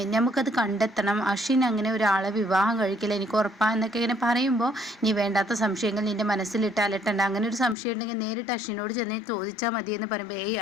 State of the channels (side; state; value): right; drops out; at 7.8 s